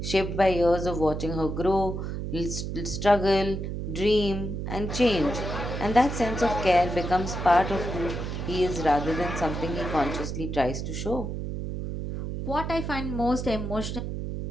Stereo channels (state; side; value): noise; right; hum, 4 dB below the sound